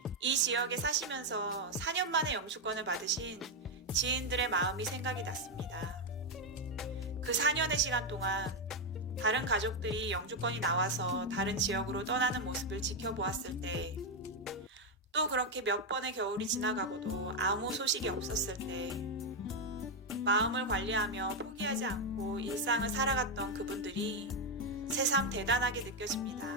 이 지역에 사시면서 4년 만에 영주권을 받으신 지인들의 마음이 생각이 났습니다. 그 4년의 시간 동안 다른 가족들이 영주권이 나와서 다른 지역으로 떠나는 모습을 지켜보았을 때, 또 그렇게 몇 번의 겨울이 지나가고도 아무 소식이 없었을 때, 마음을 관리하며 포기하지 않고 일상을 살아갔던 그분들이 새삼 대단하게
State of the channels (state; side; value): normal; both; correlation 0.04